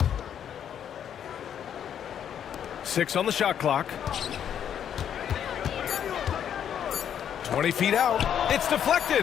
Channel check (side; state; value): right; quieter; 9.1 dB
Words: 6 on the shot clock. 20 feet out. It's